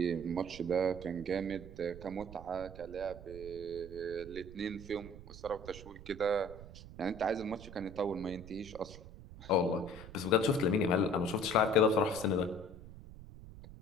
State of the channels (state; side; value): noise; right; rumble, 15 dB below the sound